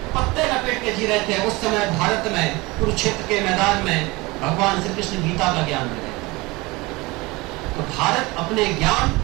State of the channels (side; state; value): left; quieter; 23.2 dB